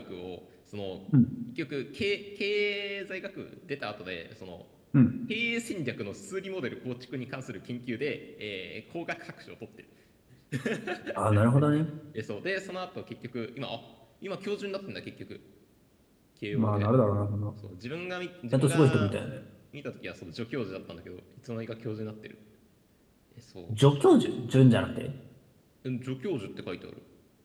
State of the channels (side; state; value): both; identical; correlation 1.00